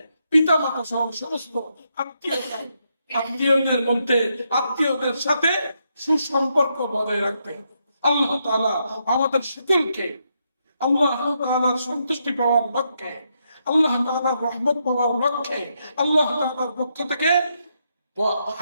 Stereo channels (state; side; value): inverted; both; correlation -0.80